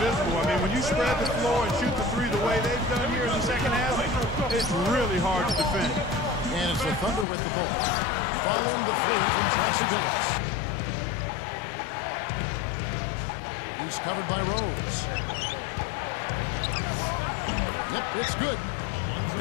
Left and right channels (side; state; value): right; drops out; at 7.2 s